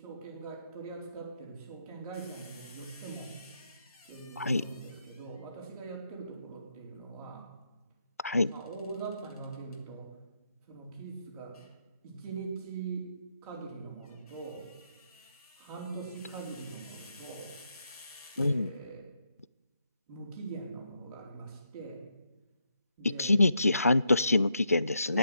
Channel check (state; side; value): inverted; both; correlation -0.80